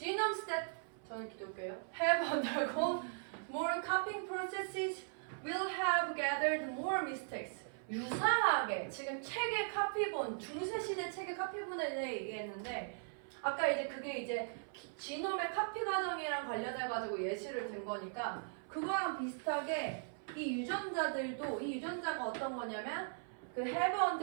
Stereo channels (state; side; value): silent; left; 52 dB below the other